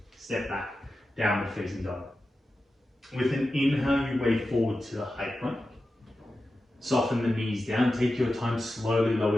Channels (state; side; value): normal; both; correlation 0.92